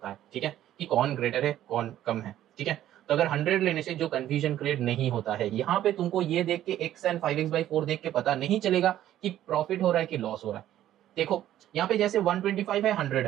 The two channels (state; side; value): quieter; left; 12.5 dB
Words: है, ठीक है, कि कौन ग्रेटर है कौन कम है, ठीक है। तो अगर 100 लेने से जो कंफ्यूजन क्रिएट नहीं होता है, यहाँ पे तुमको ये देख के x एंड 5x/4 देख के पता नहीं चलेगा कि प्रॉफिट हो रहा है कि लॉस हो रहा है। देखो यहाँ पे जैसे 125 है 100